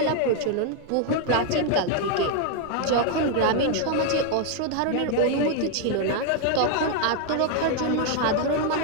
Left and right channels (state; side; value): different; both; correlation 0.00